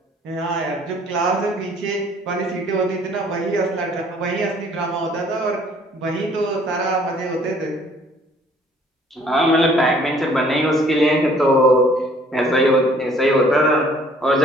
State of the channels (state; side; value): normal; both; correlation 0.58